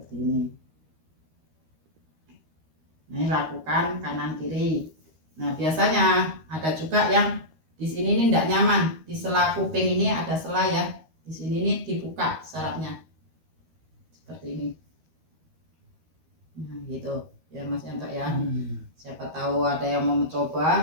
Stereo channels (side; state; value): left; late; 13 ms